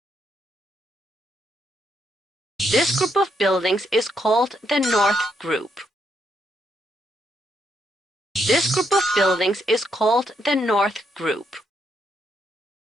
This group of buildings is called the North Group. This group of buildings is called the North Group.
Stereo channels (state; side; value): normal; both; correlation 0.77